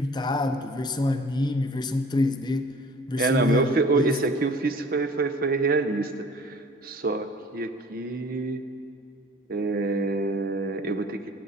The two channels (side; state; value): both; normal; correlation 0.49